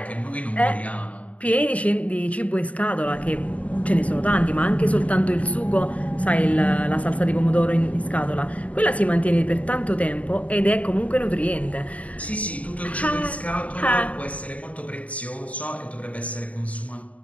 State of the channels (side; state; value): right; late; 0.068 ms